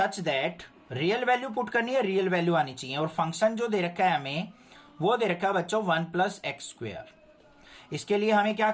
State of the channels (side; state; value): both; identical; correlation 1.00